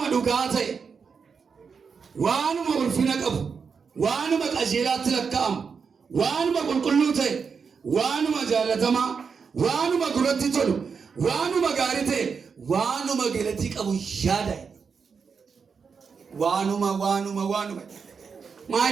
dhugaa ta'e waanuma ulfina qabu waanuma qajeelaatti lakkaa'amu waanuma qulqulluu ta'e waanuma jaallatamaa waanuma gurratti tolu waanuma gaarii ta'e waanuma galatti qabu yaada waanuma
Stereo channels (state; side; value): quieter; left; 5.8 dB